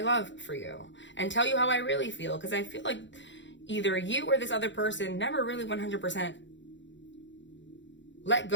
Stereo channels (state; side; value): late; right; 0.54 ms